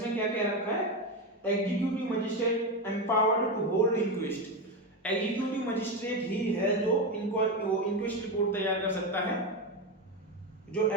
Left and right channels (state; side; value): normal; both; correlation 0.13